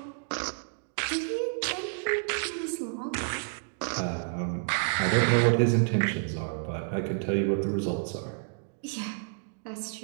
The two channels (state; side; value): silent; left; digital silence